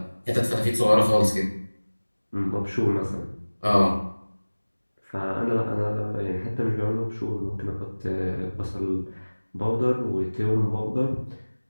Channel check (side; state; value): both; inverted; correlation -1.00